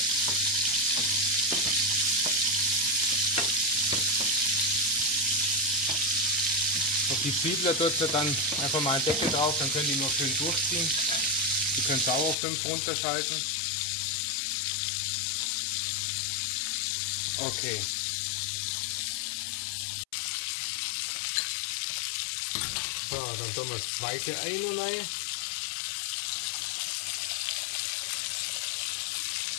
Auf die Zwiebeln tut ihr dann einfach mal einen Deckel drauf, dann können die nur schön durchziehen. Die könnt ihr auch auf 5 runterschalten. Okay. So, dann tun wir das zweite Ei rein.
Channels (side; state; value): right; drops out; at 12.4 s